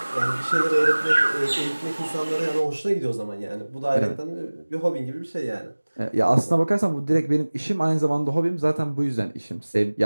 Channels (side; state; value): both; inverted; correlation -1.00